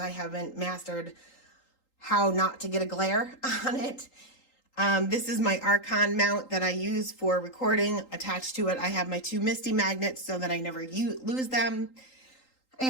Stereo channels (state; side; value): late; right; 3.8 ms